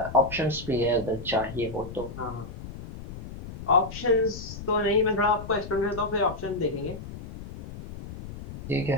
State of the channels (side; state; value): left; noise; rumble, 12 dB below the sound